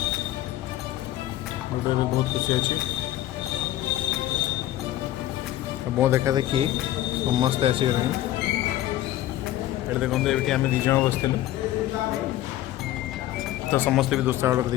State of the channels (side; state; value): right; quieter; 14.1 dB